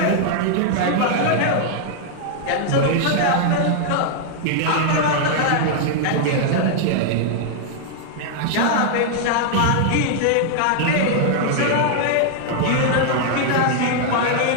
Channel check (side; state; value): both; different; correlation -0.01